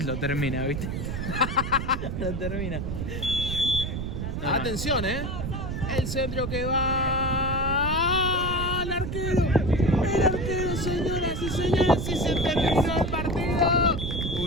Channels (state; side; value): noise; right; rumble, 4 dB below the sound